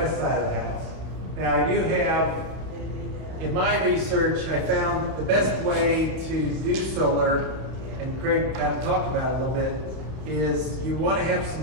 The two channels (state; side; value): late; left; 31 ms